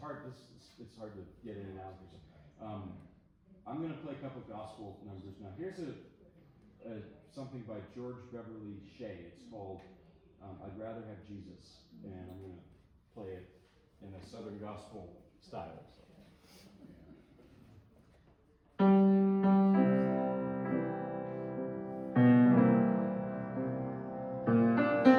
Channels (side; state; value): both; identical; correlation 1.00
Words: to get in and out. I'm going to play a couple of gospel numbers now. Here's something by George Beverly Shea. It's called I'd Rather Have Jesus, and I'm going to play it in a Southern gospel style. So.